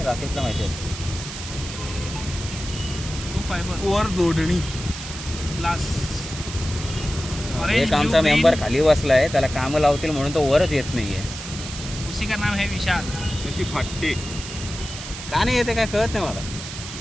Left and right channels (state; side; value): noise; right; hiss, 10 dB below the sound